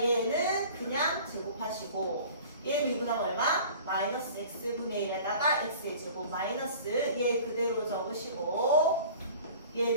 얘는 그냥 제곱하시고 얘 미분하면 얼마? 마이너스 x분의 1에다가 x의 제곱 마이너스 얘 그대로 적으시고 얘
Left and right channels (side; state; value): both; inverted; correlation -0.44